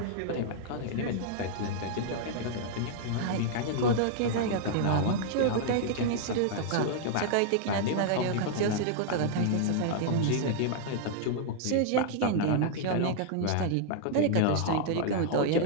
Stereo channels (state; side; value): different; both; correlation -0.01